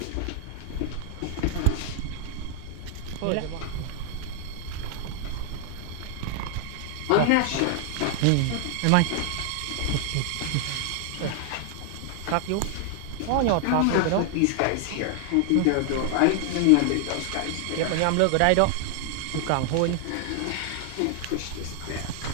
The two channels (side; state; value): both; different; correlation 0.00